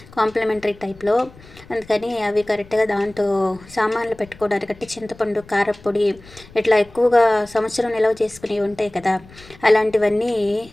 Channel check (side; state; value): left; noise; rumble, 22 dB below the sound